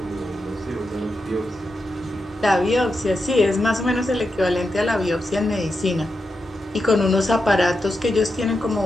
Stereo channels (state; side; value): normal; both; correlation 0.87